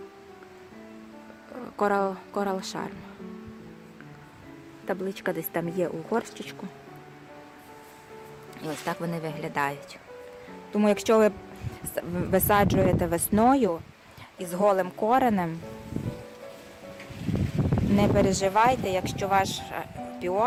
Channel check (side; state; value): both; identical; correlation 1.00